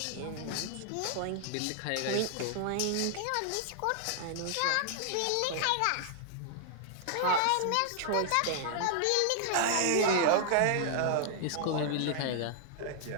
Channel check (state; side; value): different; both; correlation -0.01